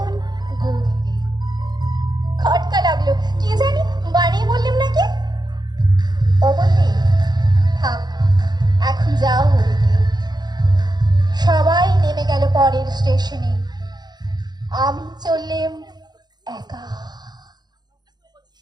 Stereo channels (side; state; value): left; late; 0.20 ms